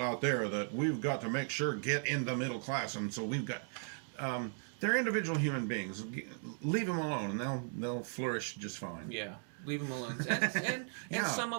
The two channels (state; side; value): silent; left; 53 dB below the other